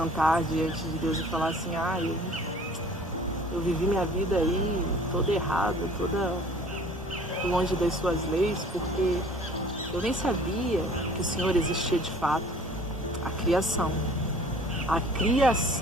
diante de Deus e falar assim, ah, eu vivi minha vida aí toda errada, toda longe das suas leis, porque eu nem sabia que o Senhor existia de fato. A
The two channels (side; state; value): both; normal; correlation 0.50